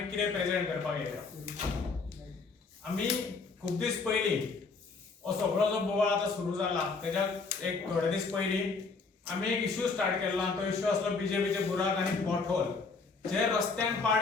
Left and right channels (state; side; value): quieter; right; 4.4 dB